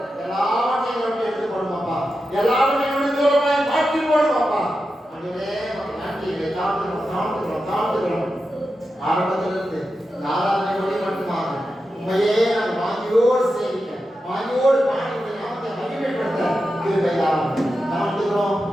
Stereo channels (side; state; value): both; normal; correlation 0.90